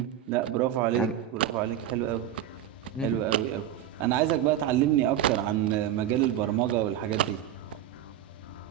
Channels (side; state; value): left; quieter; 11.2 dB